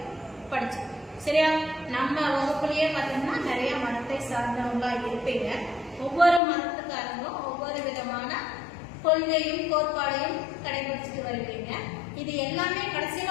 படிச்சோம். சரியா? நம்ம வகுப்புலயே பார்த்தோம்னா நிறைய மதத்தை சார்ந்தவங்களா இருப்பீங்க. ஒவ்வொரு மதத்துக்காரங்களும் ஒவ்வொரு விதமான கொள்கையும் கோட்பாடையும் கடைபிடிச்சிட்டு வருவீங்க. இது எல்லாமே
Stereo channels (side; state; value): right; drops out; at 6.4 s